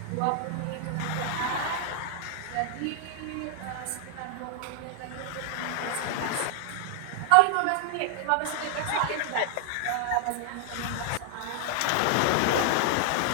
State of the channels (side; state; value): both; different; correlation 0.00